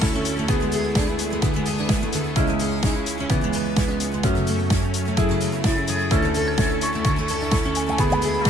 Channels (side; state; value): both; normal; correlation 0.71